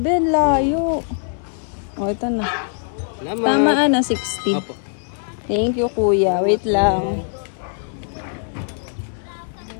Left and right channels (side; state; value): right; silent; digital silence